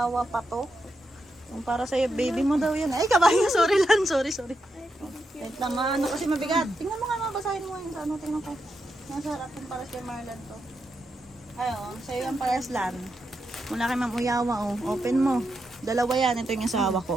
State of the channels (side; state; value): both; normal; correlation 0.85